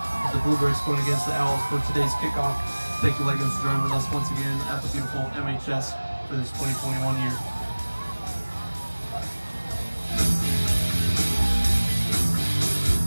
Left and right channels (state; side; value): inverted; both; correlation -1.00